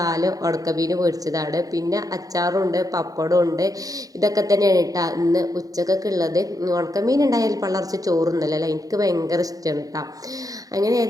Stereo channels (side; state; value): left; late; 0.17 ms